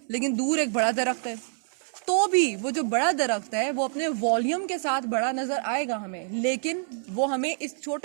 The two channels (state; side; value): silent; left; 60 dB below the other